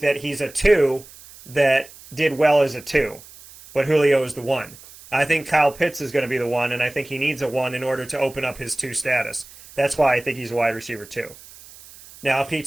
that he's a 2 that did well as a 2. But Julio is the 1. I think Kyle Pitts is going to be the 1, and I think he needs a 1 in order to open up his 2 status. That's why I think he's a wide receiver 2. Now, if he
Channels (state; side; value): noise; right; hiss, 20 dB below the sound